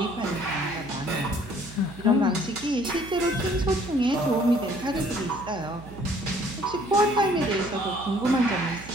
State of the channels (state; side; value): noise; right; hum, 16 dB below the sound